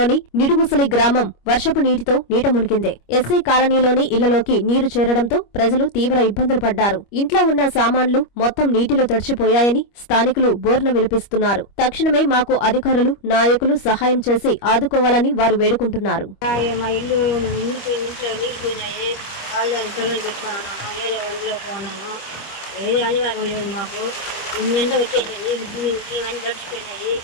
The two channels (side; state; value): right; late; 25 ms